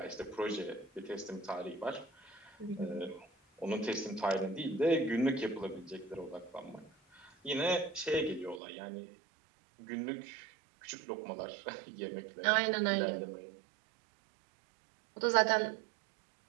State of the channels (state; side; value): drops out; left; at 8.6 s